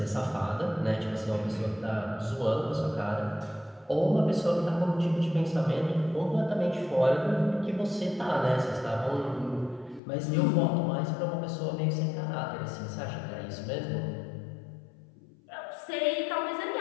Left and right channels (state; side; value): drops out; right; at 10.0 s